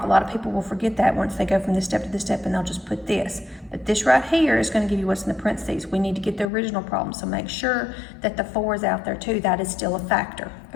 A lot of people will forget that once they go from this step to this step and they'll just put this. But this right here is going to give you what's in the parentheses. We need to get the original problem, so make sure that the 4 is out there too. That is still a factor,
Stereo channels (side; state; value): right; drops out; at 6.5 s